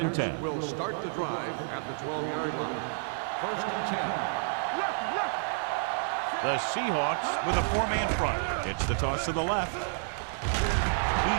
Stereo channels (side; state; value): left; silent; 58 dB below the other